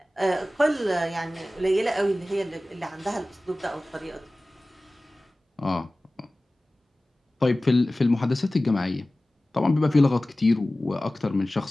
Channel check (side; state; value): both; normal; correlation 0.97